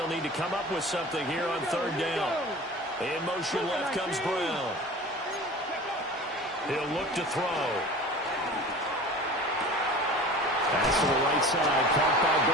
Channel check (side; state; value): both; normal; correlation 0.39